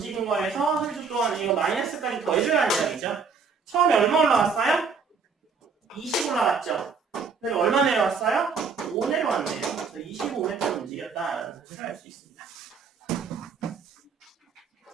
거에서 3초 동안 이거 마이너스까지 더해줘야 하는 이야기죠. 처음에 얼마 올라갔어요? 20 올라갔죠? 그리고 얼마 내려왔어요? 5 내려왔네요. 그래서 25m 움직였다라는 사실을 알 수 있습니다.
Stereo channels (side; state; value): left; quieter; 5.3 dB